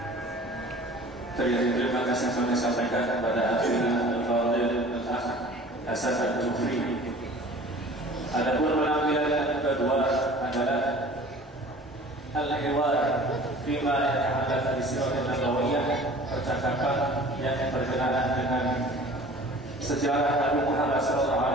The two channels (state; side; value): normal; both; correlation 0.45